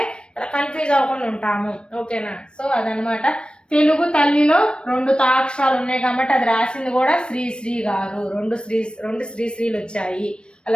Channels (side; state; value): right; late; 0.056 ms